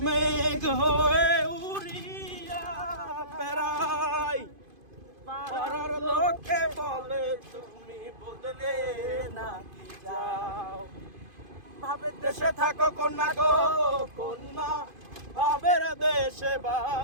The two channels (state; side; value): late; left; 2.5 ms